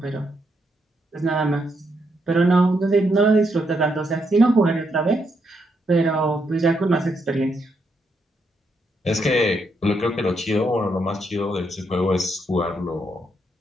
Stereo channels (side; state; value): both; normal; correlation 0.78